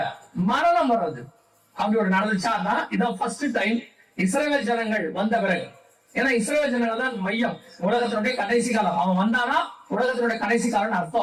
மரணம் வர்றது அப்படி ஒரு நடந்துச்சான்னா இதான் ஃபர்ஸ்ட் டைம் இஸ்ரவேல் ஜனங்கள் வந்த பிறகு. ஏன்னா இஸ்ரவேல் ஜனங்கள் தான் மையம், உலகத்தினுடைய கடைசி காலம். அவன் வந்தானா உலகத்தினுடைய கடைசி காலம்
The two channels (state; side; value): identical; both; correlation 1.00